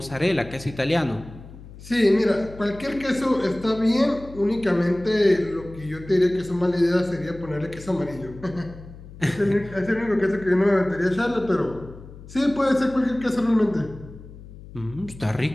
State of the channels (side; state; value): left; noise; hum, 17 dB below the sound